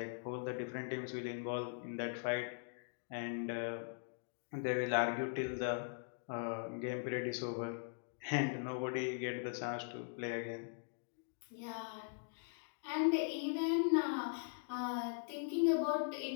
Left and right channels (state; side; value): silent; right; digital silence